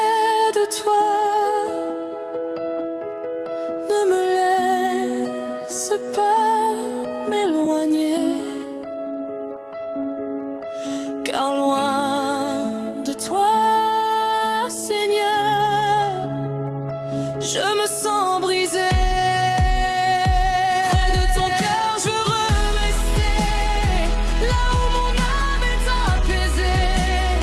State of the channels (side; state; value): both; identical; correlation 1.00